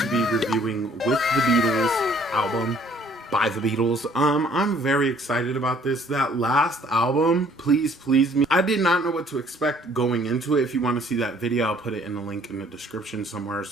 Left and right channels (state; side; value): normal; both; correlation 0.59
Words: be reviewing With the Beatles album by the Beatles. I'm very excited about this. That last album, Please Please Me, I did not know what to expect going into it. If you want to see that video, I'll put it in the link in the description somewhere or